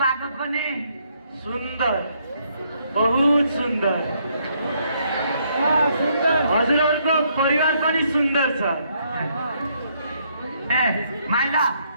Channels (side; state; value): both; inverted; correlation -0.72